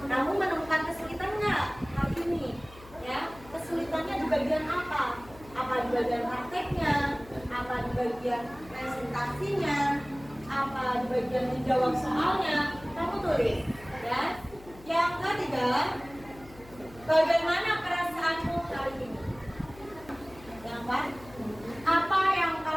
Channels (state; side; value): noise; left; hum, 20 dB below the sound